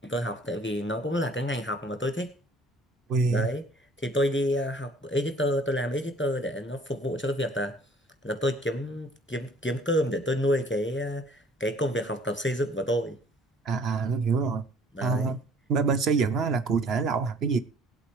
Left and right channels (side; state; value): both; normal; correlation 0.55